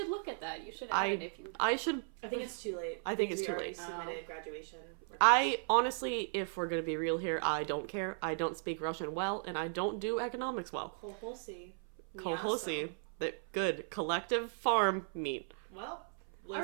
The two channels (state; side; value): silent; left; 53 dB below the other